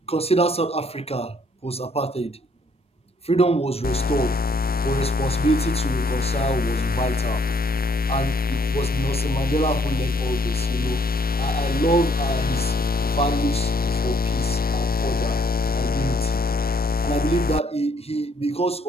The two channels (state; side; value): normal; both; correlation 0.66